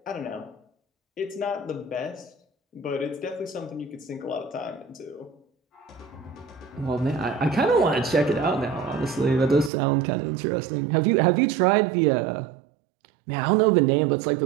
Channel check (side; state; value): left; drops out; at 9.7 s